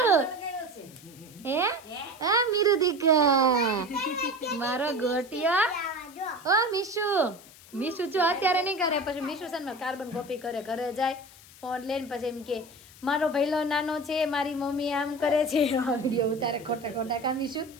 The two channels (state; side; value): noise; left; hiss, 22 dB below the sound